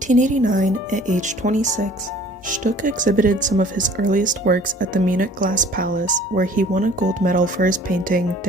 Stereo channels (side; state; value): both; normal; correlation 0.51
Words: at age 26, Stuck exhibited some of his earliest works at the Munich Glass Palace, where he won a gold medal for his painting